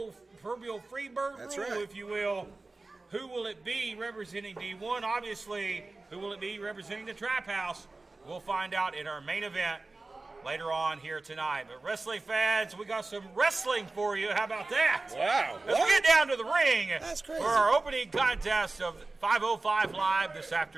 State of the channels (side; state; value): left; quieter; 3.3 dB